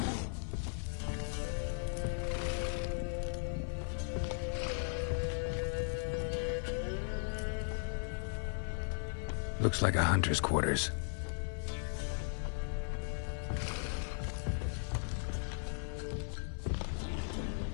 Looks like a hunter's quarters.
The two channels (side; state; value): right; silent; 53 dB below the other